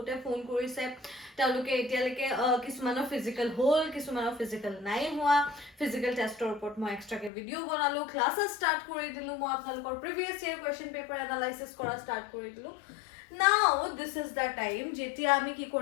ফোন কৰিছে তেওঁলোকে এতিয়ালৈকে কিছুমানৰ ফিজিক্যাল হল কিছুমানৰ ফিজিক্যাল নাই হোৱা ফিজিক্যাল টেষ্টৰ ওপৰত মই এক্সট্ৰাকে ভিডিও বনালো ক্লাसेस স্টাৰ্ট কৰি দিলো মই আপোনালোকৰ প্ৰিভিয়াস ইয়াৰ কোৱেশ্চন পেপাৰ এনালাইসিস কৰা স্টাৰ্ট কৰি দিলো. Now this is the time যেতিয়া আমি কি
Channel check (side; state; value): right; drops out; at 7.3 s